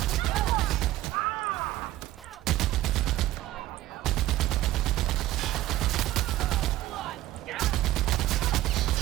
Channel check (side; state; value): left; quieter; 15.5 dB